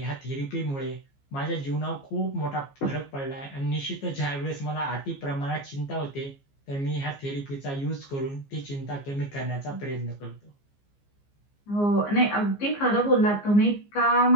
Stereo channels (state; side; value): late; right; 15 ms